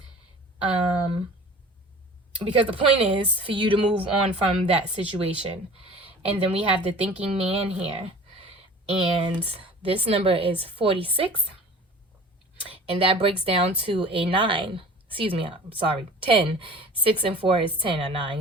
Because the point is for you to move on from that situation. And then we have the thinking man here. And this number is 46. And that breaks down to a 9. Excuse me, I'm sorry, 10. 6 and 4 is 10 or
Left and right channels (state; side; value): normal; both; correlation 0.42